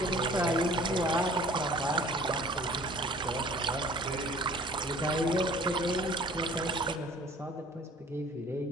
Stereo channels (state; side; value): normal; both; correlation 0.50